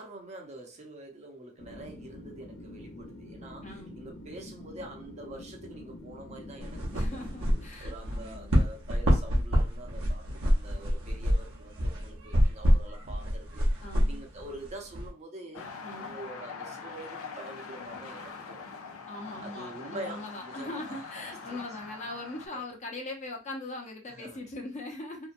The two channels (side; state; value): both; normal; correlation 0.88